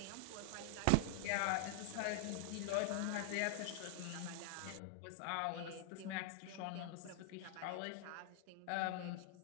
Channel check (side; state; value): both; different; correlation -0.01